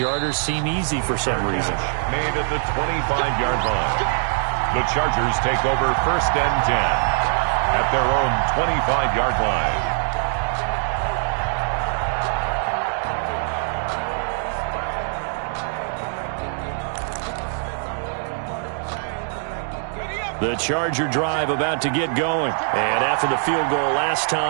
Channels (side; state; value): left; silent; 64 dB below the other